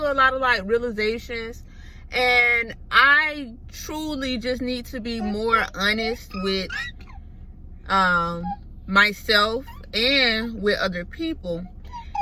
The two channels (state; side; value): identical; both; correlation 1.00